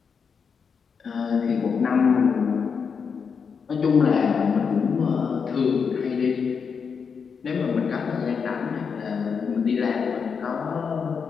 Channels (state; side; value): quieter; right; 6.1 dB